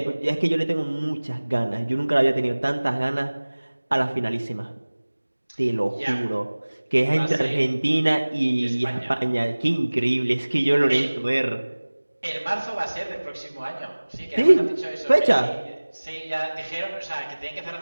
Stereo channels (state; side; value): inverted; both; correlation -1.00